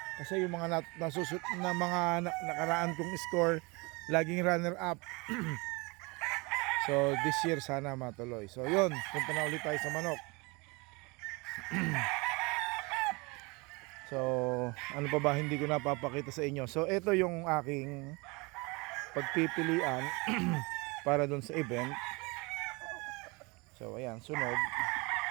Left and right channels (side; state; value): left; quieter; 27.0 dB